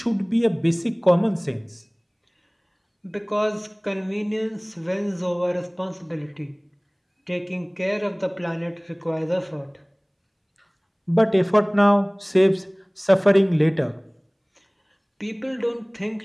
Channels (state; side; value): identical; both; correlation 1.00